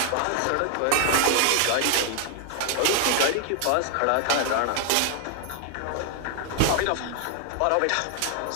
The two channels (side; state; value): both; different; correlation 0.00